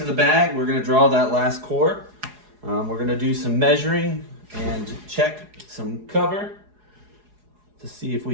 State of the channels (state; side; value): late; left; 4.8 ms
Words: the bag, we're going to draw that last core. We're going to do some measuring and check some cover to see if we